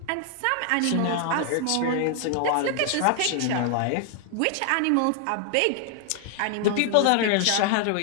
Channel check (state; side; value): different; both; correlation 0.00